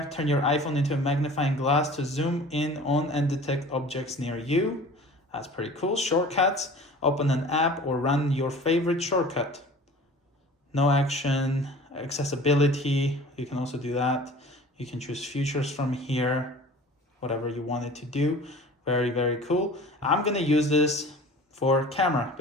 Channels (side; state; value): both; normal; correlation 0.43